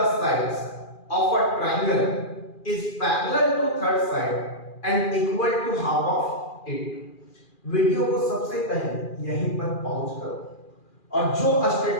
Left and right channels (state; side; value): late; right; 2.4 ms